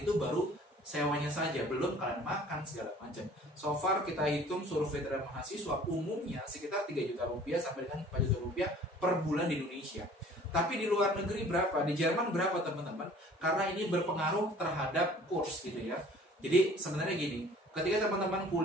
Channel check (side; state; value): both; normal; correlation 0.50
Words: baru sewanya saja, belum kalian makan segala macam. So far kita hitung survei terhadap mahasiswa umumnya sekitar 3 juta rupiah sampai dengan 4 juta rupiah per bulan di Indonesia. Tapi di luar negeri berapa? Di Jerman berapa teman-teman? Karena ini berpengaruh terhadap kurs gitu ya. Jadi sebenarnya gini, ketika teman-teman